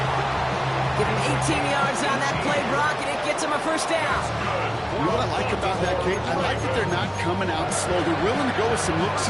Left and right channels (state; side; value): identical; both; correlation 1.00